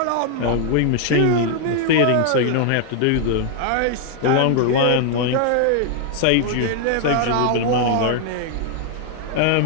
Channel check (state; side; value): different; both; correlation 0.00